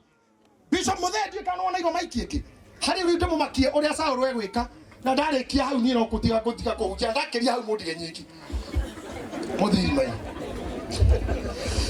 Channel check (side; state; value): both; identical; correlation 1.00